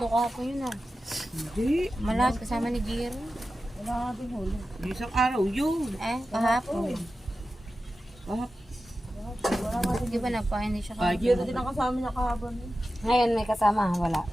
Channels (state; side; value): normal; both; correlation 0.93